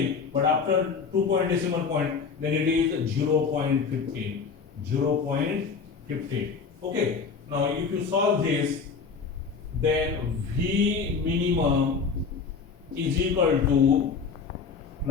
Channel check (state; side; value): quieter; right; 5.4 dB